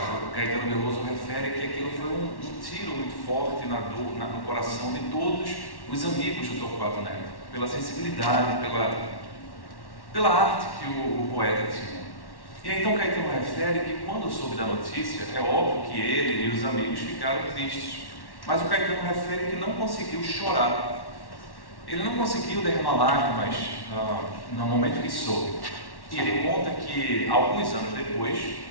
Caetano Veloso refere que aquilo foi um tiro muito forte no coração de todos os amigos do Torquato Neto, pela sensibilidade, pela arte que o poeta tinha. E aí, então Caetano refere que quando soube da notícia, é óbvio que ele e os amigos ficaram tristes, mas o Caetano refere que não conseguiu chorar. Ele não conseguiu derramar lágrimas no momento que soube. E ele conta que, alguns anos depois,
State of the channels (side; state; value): right; late; 1.1 ms